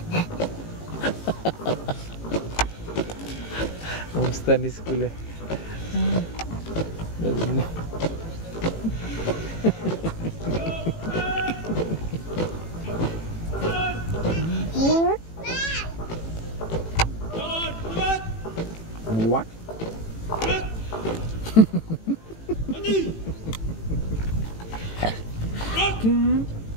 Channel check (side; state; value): right; late; 18 ms